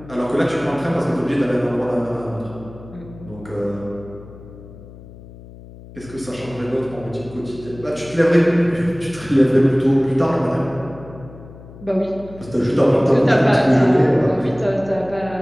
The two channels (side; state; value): left; noise; hum, 18 dB below the sound